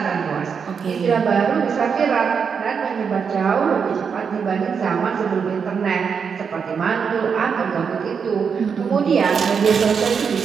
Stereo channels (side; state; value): left; quieter; 6.3 dB